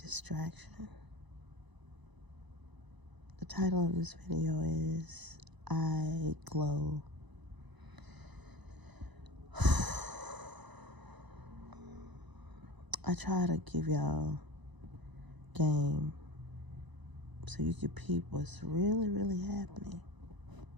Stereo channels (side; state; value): left; late; 1.0 ms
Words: The title of this video is I Glow. I try to give y'all game so you can peep what's really happening.